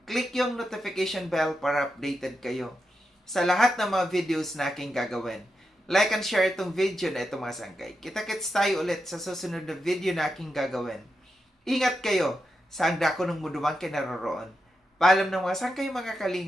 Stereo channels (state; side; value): normal; both; correlation 0.87